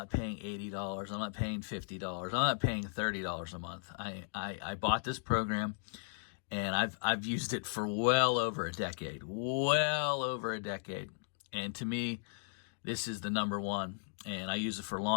paying $80. I'm not paying $50. I'm not paying $30 a month. I bought this program, and I've used it for well over a decade. And to me, this is the number one. And I use it for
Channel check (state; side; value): silent; right; digital silence